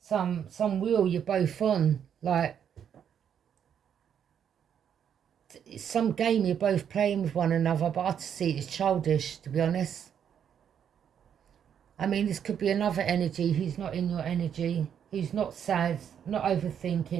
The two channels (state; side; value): quieter; left; 8.5 dB